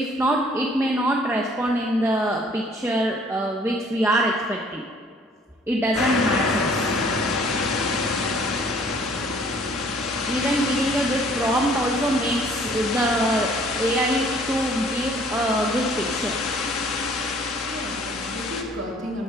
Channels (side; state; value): both; normal; correlation 0.57